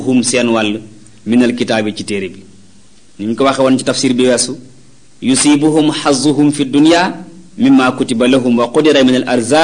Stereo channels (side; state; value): both; identical; correlation 1.00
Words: seen wàll minal kitaabi ci téere bi ni ñu ko waxe woon ci tafsir bi weesu yusibuhum xazuhum fi dunya mimma kutiba lahum wa qudira min al